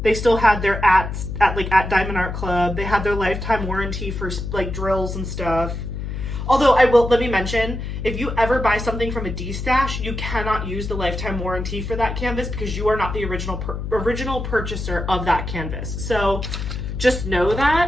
They still had their at Diamond Art Club. They had their lifetime warranty for like drills and stuff. Although let me mention, if you ever buy something from a Destash, you cannot use the lifetime warranty for that canvas, because you are not the original purchaser of that canvas. So just know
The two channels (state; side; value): noise; left; hum, 5 dB below the sound